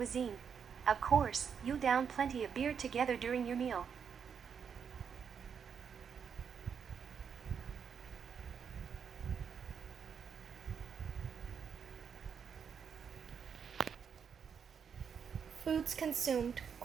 Of course, you'll down plenty of beer together during your meal. Foods consumed,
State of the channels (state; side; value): quieter; left; 7.0 dB